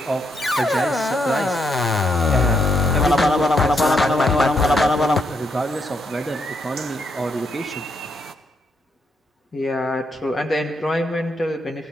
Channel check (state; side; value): normal; both; correlation 0.77